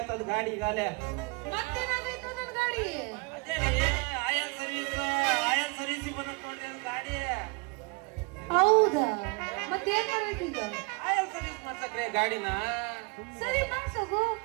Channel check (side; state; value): left; quieter; 29.3 dB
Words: ಅದು ಗಾಡಿ ಈಗಾಲೆ. ಮತ್ತೇನಾಗೈತು ನನ್ ಗಾಡಿ? ಅದೇ ಆಯಲ್ ಸರ್ವಿಸ್ ಬಂದತ್ ನೋಡ್ರಿ ಅದು ಗಾಡಿ. ಹೌದಾ? ಮತ್ತೇನ್ ಮಾಡ್ಬೇಕು ಈಗ? ಆಯಲ್ ಸರ್ವಿಸ್ ಮಾಡ್ಸಕ್ರಿ ಗಾಡಿನ. ಸರಿ ಮಾಡ್ಸೋಗು.